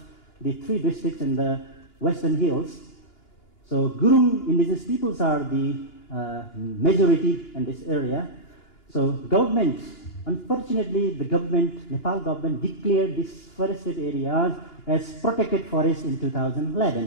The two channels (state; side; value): late; right; 2.9 ms